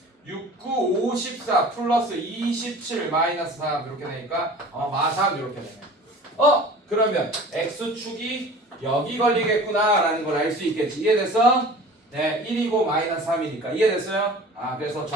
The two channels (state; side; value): normal; both; correlation 0.42